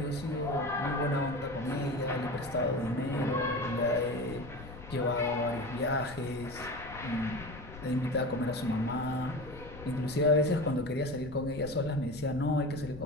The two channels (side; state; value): left; noise; rumble, 15 dB below the sound